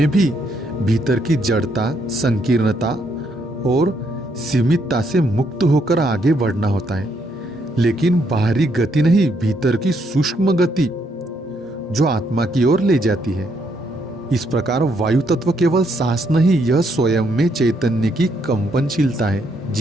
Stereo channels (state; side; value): normal; both; correlation 0.74